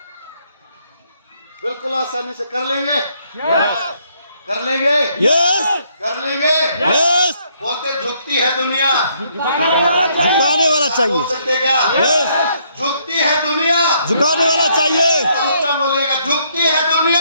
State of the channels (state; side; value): inverted; both; correlation -0.70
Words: बिल्कुल आसानी से कर लेंगे। कर लेंगे। यस। कर लेंगे। यस। बोलते झुकती है दुनिया, झुकाने वाला बोल चाहिए। सकते क्या? यस। झुकती है दुनिया, झुकाने वाला चाहिए। ऊंचा बोलिएगा, झुकती है